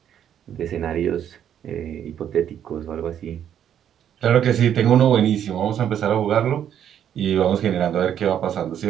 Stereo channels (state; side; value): quieter; left; 9.7 dB